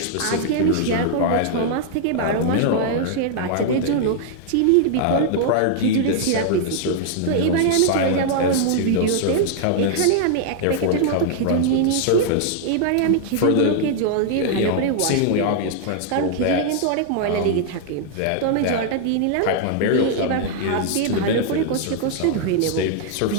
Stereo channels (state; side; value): different; both; correlation -0.01